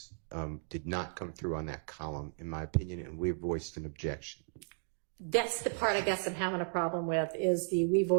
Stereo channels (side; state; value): left; silent; 55 dB below the other